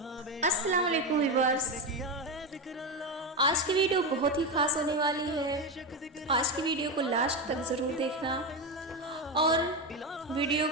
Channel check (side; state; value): both; normal; correlation 0.14